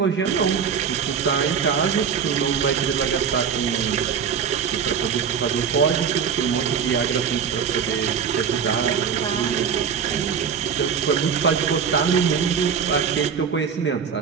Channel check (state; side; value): quieter; left; 7.0 dB